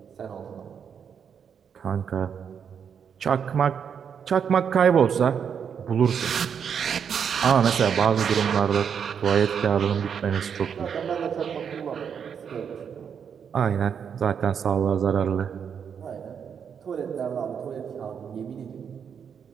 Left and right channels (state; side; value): quieter; left; 7.4 dB